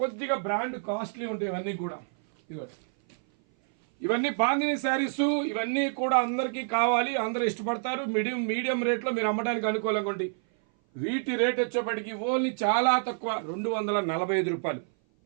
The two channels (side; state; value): left; silent; 56 dB below the other